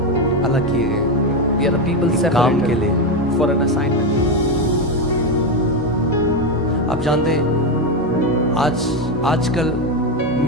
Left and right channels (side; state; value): both; normal; correlation 0.10